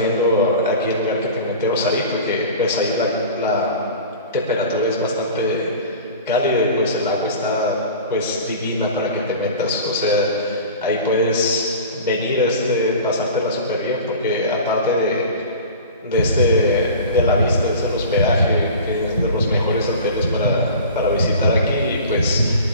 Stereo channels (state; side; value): inverted; both; correlation -0.38